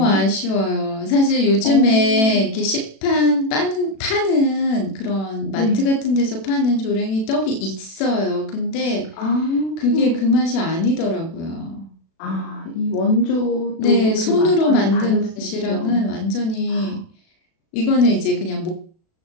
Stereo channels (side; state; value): right; late; 36 ms